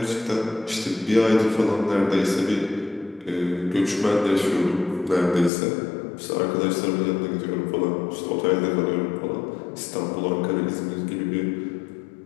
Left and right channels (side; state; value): right; drops out; at 5.5 s